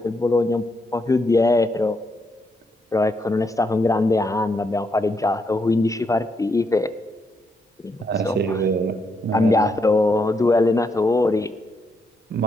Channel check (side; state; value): both; normal; correlation 0.78